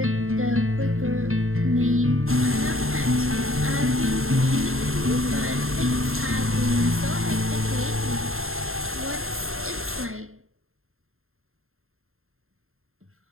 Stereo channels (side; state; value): left; late; 0.61 ms